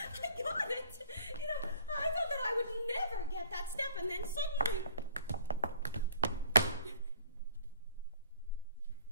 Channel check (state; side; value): inverted; both; correlation -0.54